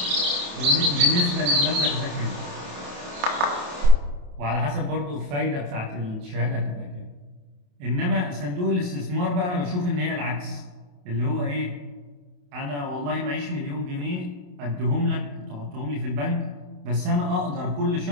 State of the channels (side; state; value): left; late; 28 ms